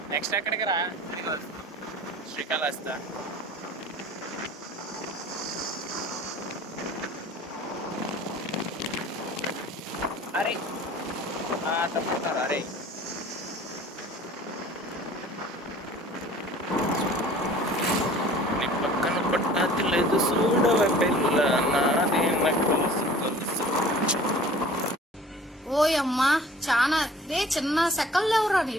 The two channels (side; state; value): both; normal; correlation 0.47